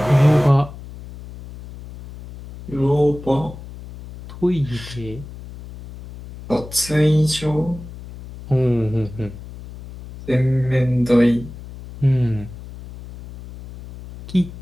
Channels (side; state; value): left; noise; hum, 15 dB below the sound